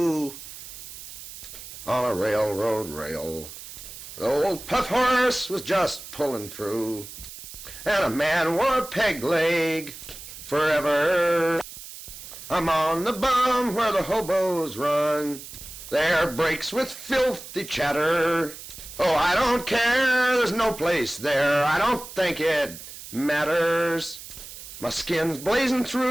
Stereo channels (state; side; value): noise; right; hiss, 13 dB below the sound